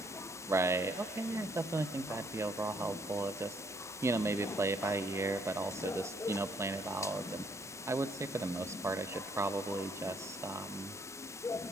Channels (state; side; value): normal; both; correlation 0.68